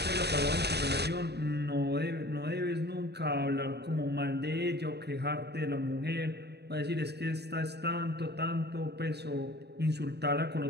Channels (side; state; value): left; late; 0.48 ms